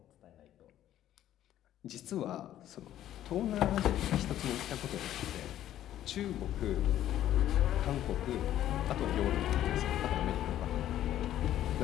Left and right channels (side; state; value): right; quieter; 12.2 dB